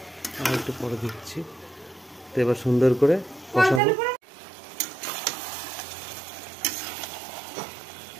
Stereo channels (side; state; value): left; drops out; at 3.8 s